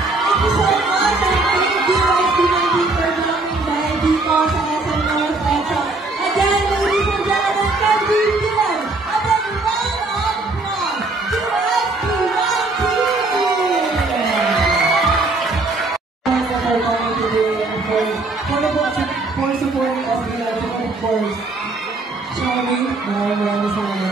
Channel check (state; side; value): quieter; left; 3.2 dB